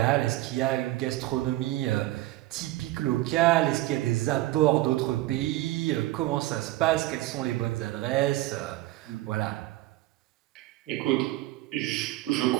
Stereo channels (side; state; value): left; quieter; 17.1 dB